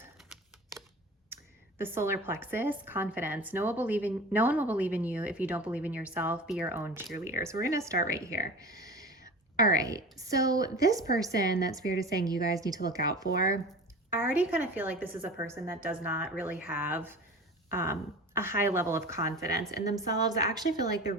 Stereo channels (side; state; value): both; normal; correlation 0.36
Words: the solar plexus, confidence. No one will believe in you if you don't believe in yourself. Be your own cheerleader. So we're going to start right here. All right. So this person that Spirit is saying you guys need to look out for, I already kind of feel like this is a person that does not really have a high level of confidence in themselves. I actually feel like the